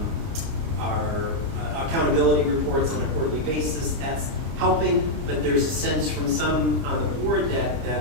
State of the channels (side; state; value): left; late; 30 ms